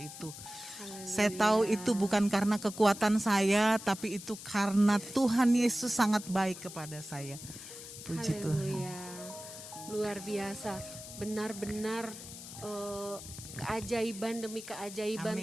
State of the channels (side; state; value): left; noise; hiss, 13 dB below the sound